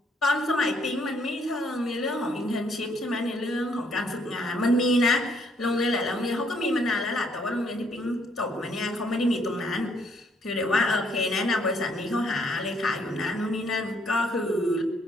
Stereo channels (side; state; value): both; normal; correlation 0.68